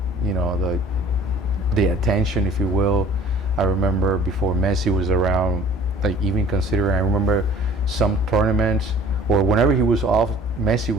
the attention, if you will. I remember before Messi was around, like even considering, I remember some tournaments or whenever he was off, Messi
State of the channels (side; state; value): both; normal; correlation 0.50